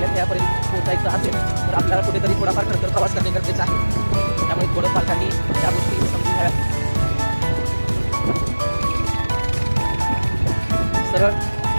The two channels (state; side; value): inverted; both; correlation -1.00